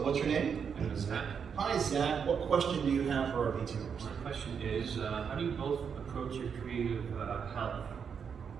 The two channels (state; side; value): quieter; left; 6.8 dB